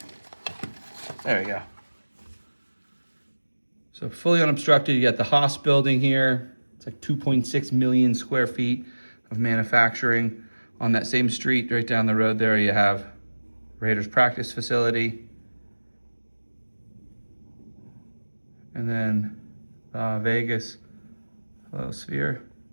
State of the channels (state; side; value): inverted; both; correlation -1.00